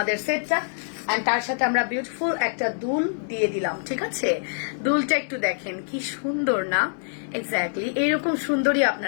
সেটটা। এন্ড তার সাথে আমরা বিউটিফুল একটা দুল দিয়ে দিলাম। ঠিক আছে, দুলটা একটু দেখেন কি সুন্দর না? এক্স্যাক্টলি এরকম সুন্দরই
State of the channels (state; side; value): silent; right; digital silence